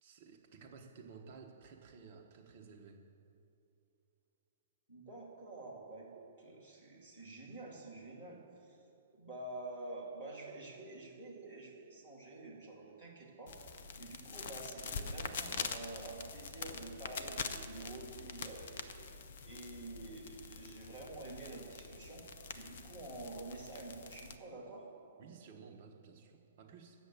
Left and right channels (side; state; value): both; inverted; correlation -0.51